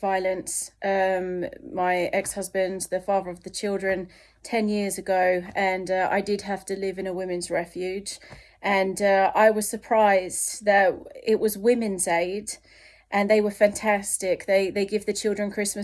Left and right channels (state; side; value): identical; both; correlation 1.00